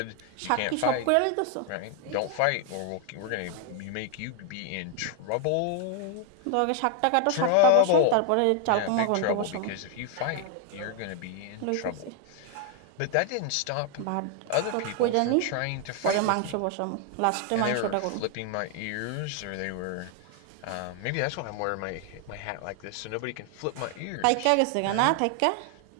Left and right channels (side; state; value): both; different; correlation 0.00